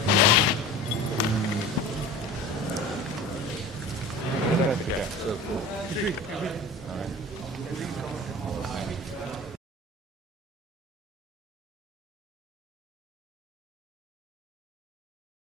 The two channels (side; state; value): both; normal; correlation 0.37